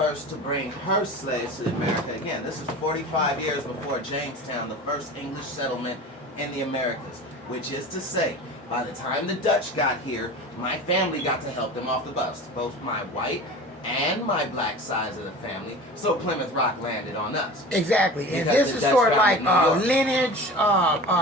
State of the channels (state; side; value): normal; both; correlation 0.35